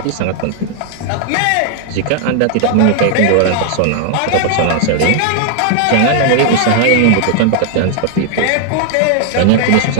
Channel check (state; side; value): different; both; correlation 0.00